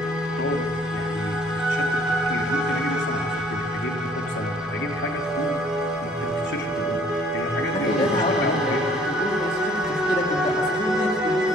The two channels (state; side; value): normal; both; correlation 0.58